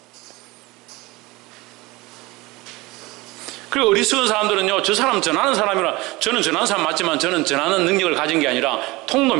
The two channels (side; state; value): left; quieter; 22.0 dB